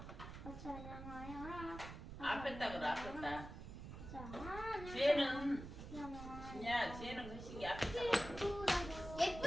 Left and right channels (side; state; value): right; noise; rumble, 10 dB below the sound